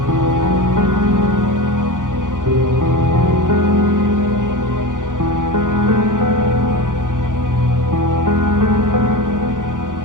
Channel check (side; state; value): left; late; 0.88 ms